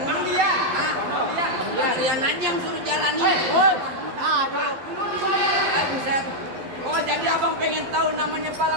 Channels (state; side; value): late; left; 11 ms